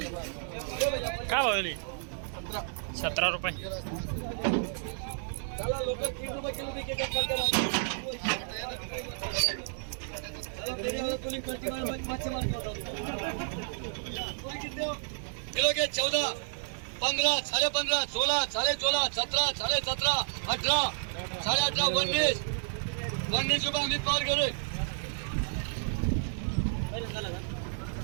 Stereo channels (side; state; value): left; silent; digital silence